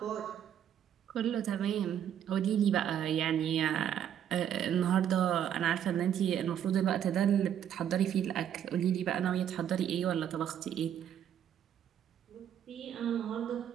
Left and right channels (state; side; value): quieter; left; 9.7 dB